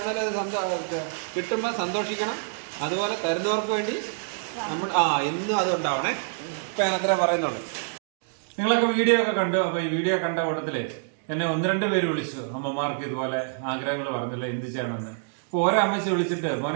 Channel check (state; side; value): silent; left; digital silence